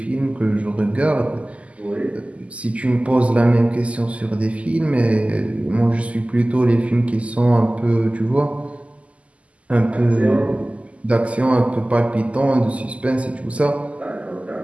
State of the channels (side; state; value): left; late; 0.064 ms